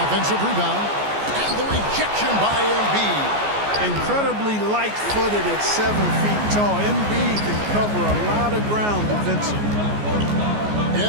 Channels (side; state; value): left; late; 14 ms